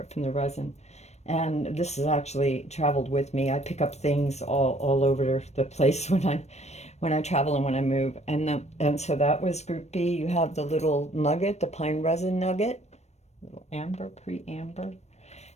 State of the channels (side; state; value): right; late; 0.32 ms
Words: from the resin. And this has actually traveled with me. I pick up things all over the place when I travel and when I move. And so that was group B. You have the little nugget, the pine resin nugget, little amber, pre-amber.